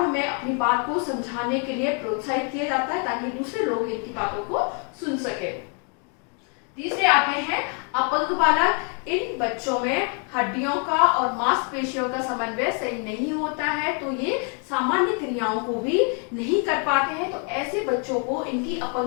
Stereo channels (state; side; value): quieter; right; 39.7 dB